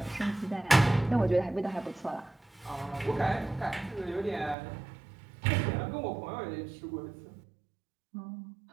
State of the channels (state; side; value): drops out; left; at 4.5 s